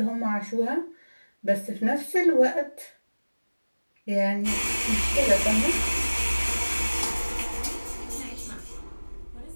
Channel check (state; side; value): inverted; both; correlation -1.00